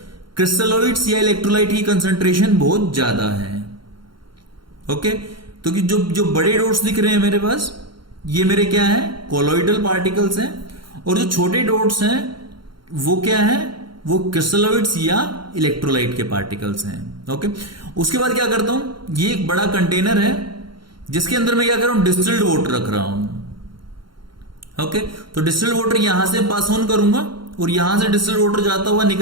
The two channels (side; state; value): left; late; 0.73 ms